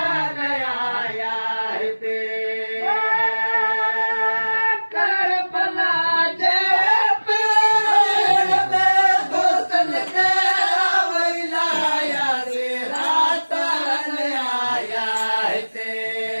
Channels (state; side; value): inverted; both; correlation -1.00